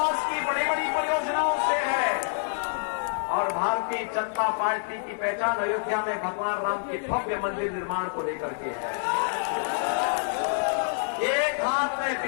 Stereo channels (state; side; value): silent; right; 60 dB below the other